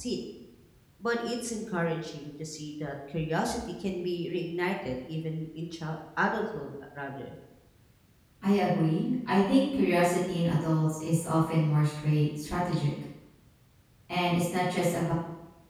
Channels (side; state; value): both; identical; correlation 1.00